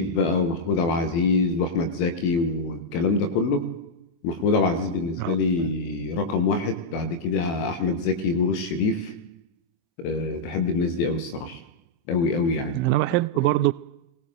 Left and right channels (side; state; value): right; late; 24 ms